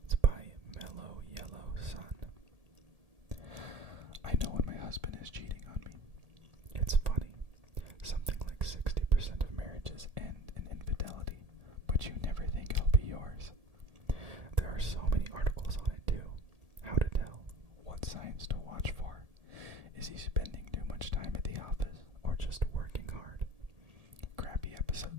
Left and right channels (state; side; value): late; left; 1.7 ms